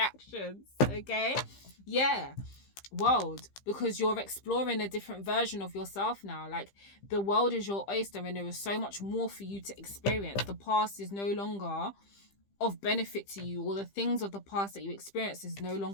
Okay? Yeah. World, because you're exploring a different version of yourself now. Like, the world is your oyster and there is so much more for you to experience. The past is no longer of benefit to you, or the things of the past that you experienced is no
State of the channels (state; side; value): late; right; 15 ms